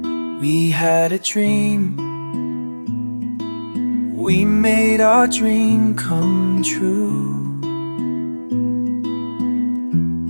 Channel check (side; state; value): both; inverted; correlation -1.00